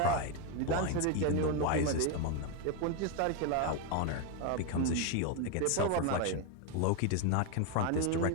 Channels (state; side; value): different; both; correlation 0.02